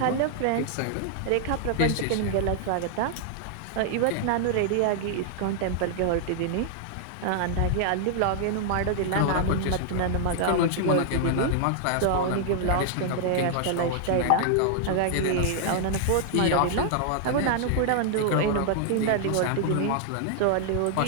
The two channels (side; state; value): both; different; correlation -0.01